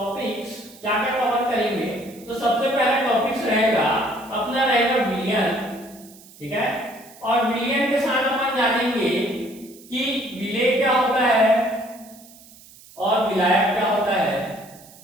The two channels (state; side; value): noise; right; hiss, 22 dB below the sound